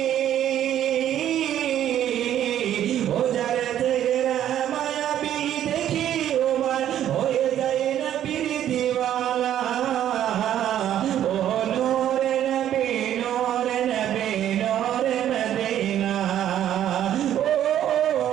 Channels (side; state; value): left; quieter; 11.1 dB